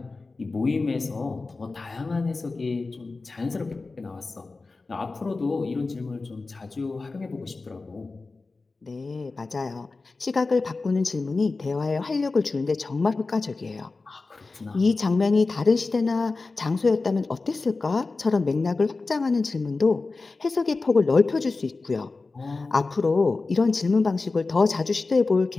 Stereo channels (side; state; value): right; quieter; 3.7 dB